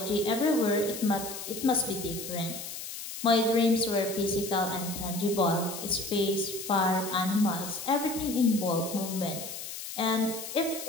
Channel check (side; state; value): left; noise; hiss, 9 dB below the sound